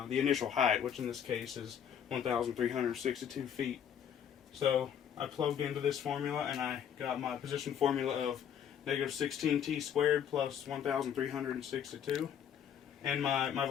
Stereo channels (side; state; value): right; quieter; 8.7 dB